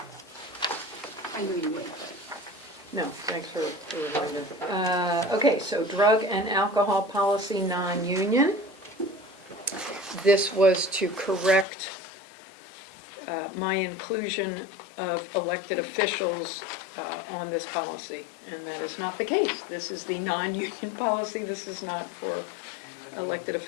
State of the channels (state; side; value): drops out; right; at 11.7 s